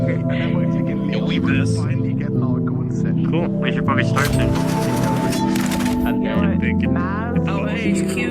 Yo, we best. Cool. We should probably start soon. I'm thinking. Oh, hey, HQ.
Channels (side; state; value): both; identical; correlation 1.00